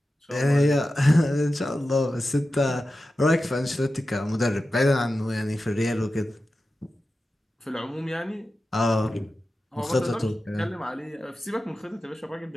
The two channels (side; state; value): both; normal; correlation 0.93